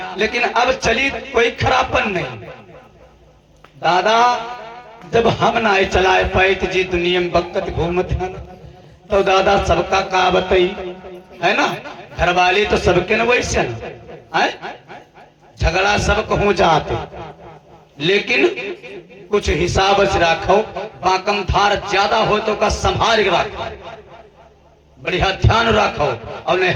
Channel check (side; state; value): both; identical; correlation 1.00